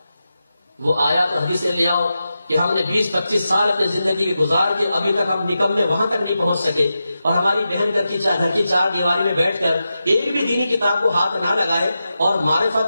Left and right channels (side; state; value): both; inverted; correlation -0.90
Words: وہ آیا تو حدیثیں لے آؤ کہ ہم نے 20-25 سال اپنی زندگی کے گزار کے ابھی تک ہم نکمے وہاں تک نہیں پہنچ سکے، اور ہماری بہن گھر کی چار دیواری میں بیٹھ کر ایک بھی دینی کتاب کو ہاتھ نہ لگائے، اور